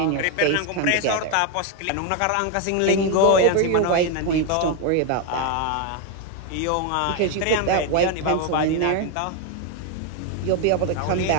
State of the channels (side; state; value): both; different; correlation 0.01